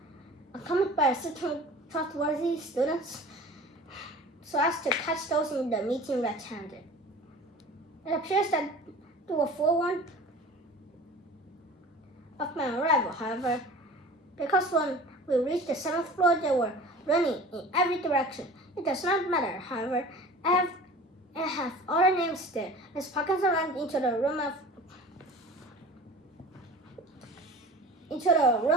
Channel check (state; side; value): normal; both; correlation 0.41